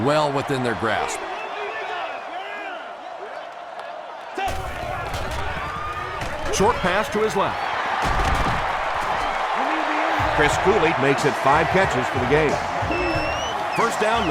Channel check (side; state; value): both; identical; correlation 1.00